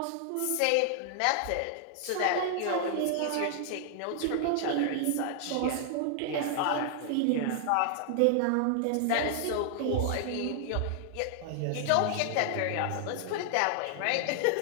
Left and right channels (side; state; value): both; different; correlation -0.01